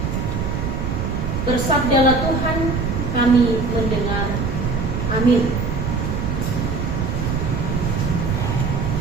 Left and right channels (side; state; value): right; noise; rumble, 1 dB below the sound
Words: Bersabdalah Tuhan, kami mendengar. Amin.